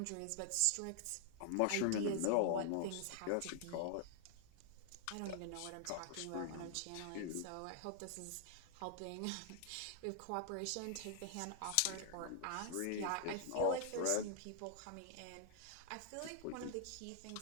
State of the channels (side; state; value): both; different; correlation -0.01